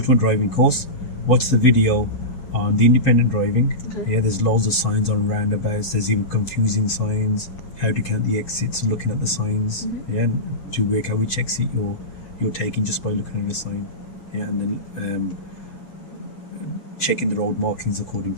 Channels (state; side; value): late; right; 7.9 ms